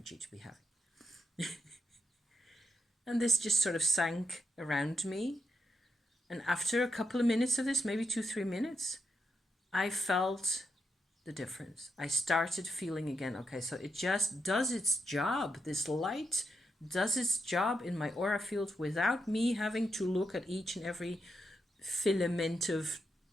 to be having. And this just sort of sank around me. And after a couple of minutes of this, maybe 2-3 minutes, I felt the difference. I started feeling again, okay, so it just does its job. This light does its job in my aura field without me having to look at each and every filament of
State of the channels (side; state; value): both; normal; correlation 0.83